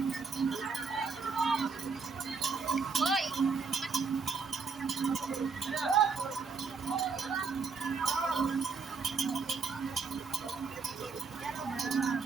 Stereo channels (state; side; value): quieter; left; 5.0 dB